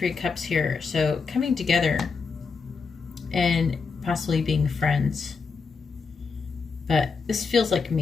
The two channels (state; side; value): quieter; right; 5.0 dB